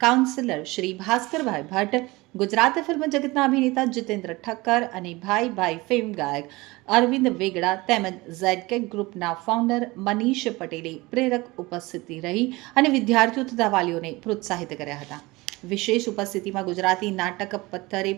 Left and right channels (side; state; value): left; quieter; 22.0 dB